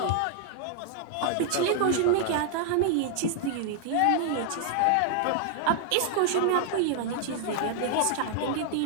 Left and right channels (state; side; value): different; both; correlation 0.00